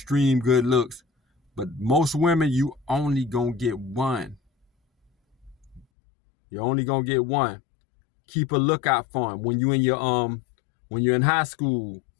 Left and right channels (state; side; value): drops out; right; at 5.9 s